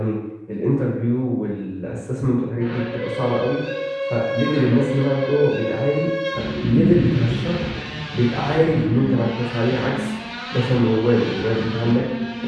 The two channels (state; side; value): identical; both; correlation 1.00